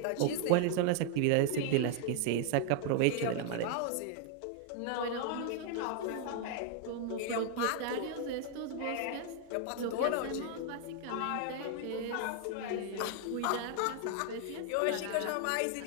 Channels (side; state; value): both; different; correlation 0.00